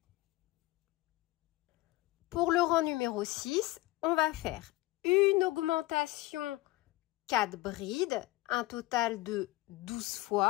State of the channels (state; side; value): quieter; right; 19.3 dB